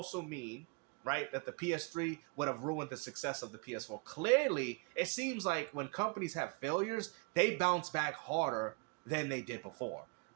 mean, right, that the PS3 would have ruined the success of the PS4. Clearly, it seems like when companies have failures, they bounce back harder than they did before.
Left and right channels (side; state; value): left; quieter; 32.5 dB